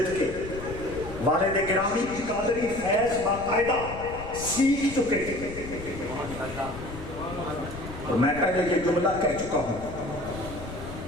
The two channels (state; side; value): noise; left; rumble, 11 dB below the sound